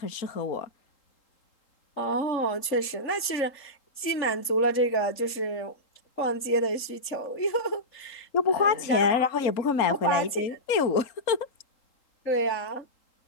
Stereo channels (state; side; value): late; right; 3.8 ms